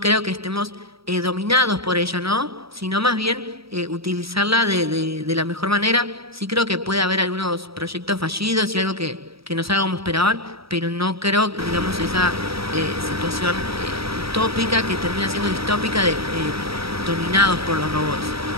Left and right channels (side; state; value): left; late; 0.76 ms